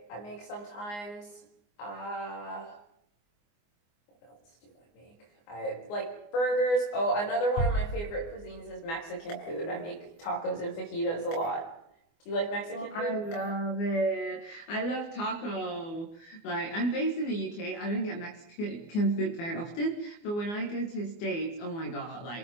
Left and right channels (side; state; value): right; late; 24 ms